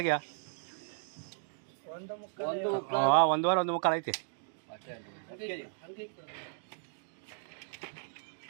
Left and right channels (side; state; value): left; silent; digital silence